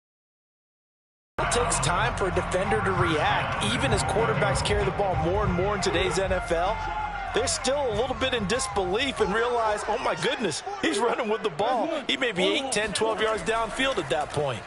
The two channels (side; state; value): both; identical; correlation 1.00